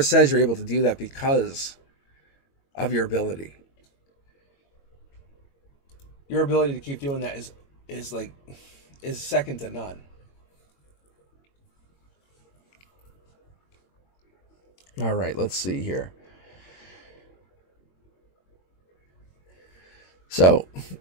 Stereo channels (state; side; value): late; right; 22 ms